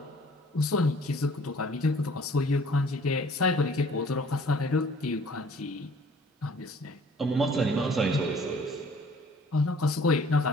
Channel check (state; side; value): normal; both; correlation 0.54